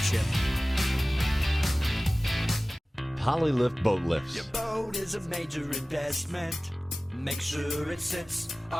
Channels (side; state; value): both; normal; correlation 0.97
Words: Polylift boat lifts. Your boat is a major investment. Make sure it sits